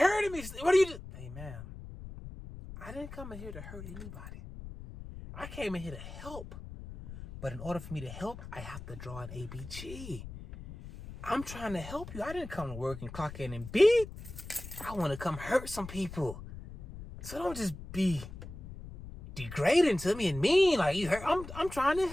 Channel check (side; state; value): left; noise; rumble, 12 dB below the sound